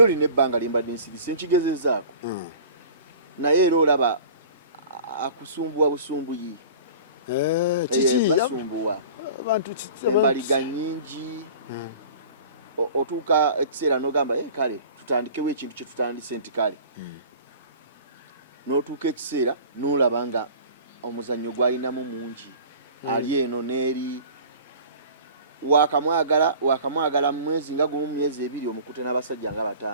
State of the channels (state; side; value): inverted; both; correlation -0.43